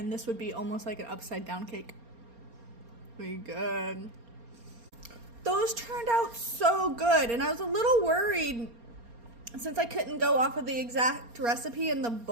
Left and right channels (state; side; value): late; left; 4.3 ms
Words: this would be almost like an upside down cake. Pretty good. Those turned out so good. And I was a little worried since I couldn't go off of the exact recipe in the